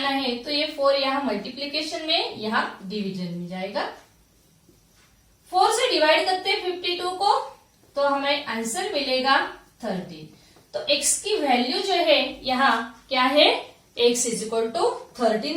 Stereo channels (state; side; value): identical; both; correlation 1.00